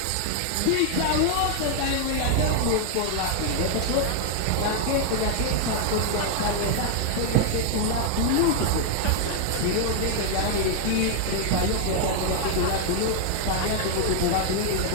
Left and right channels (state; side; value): different; both; correlation 0.00